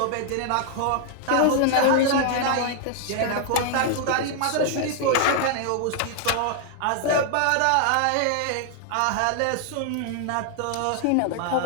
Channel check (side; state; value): both; different; correlation 0.00